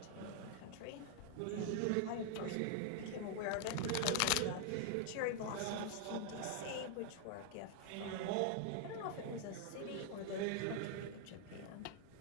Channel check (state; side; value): different; both; correlation 0.00